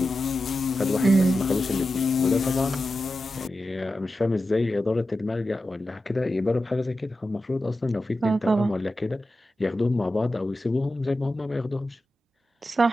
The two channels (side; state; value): both; normal; correlation 0.92